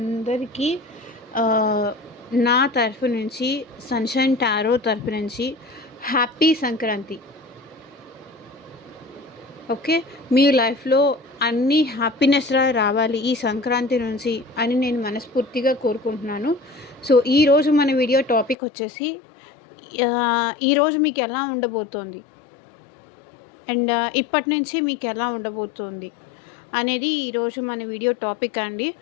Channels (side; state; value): right; drops out; at 18.6 s